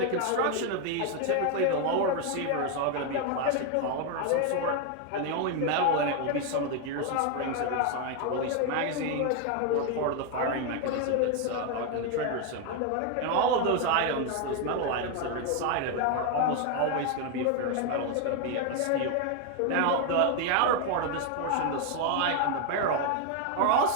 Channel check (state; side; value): different; both; correlation 0.01